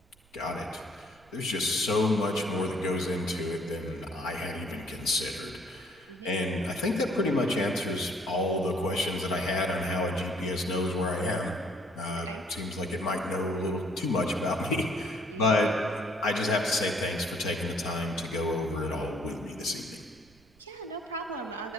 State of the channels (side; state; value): right; noise; rumble, 30 dB below the sound